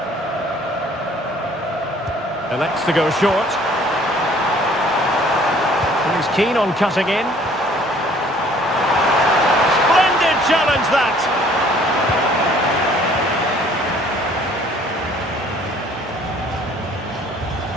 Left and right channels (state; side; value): normal; both; correlation 0.56